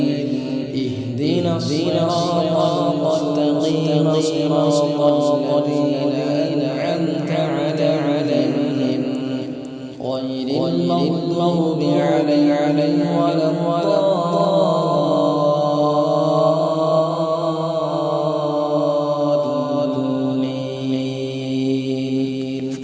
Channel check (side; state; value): both; identical; correlation 1.00